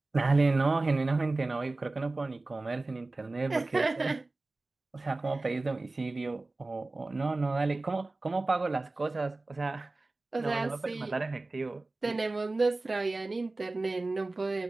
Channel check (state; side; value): quieter; left; 3.2 dB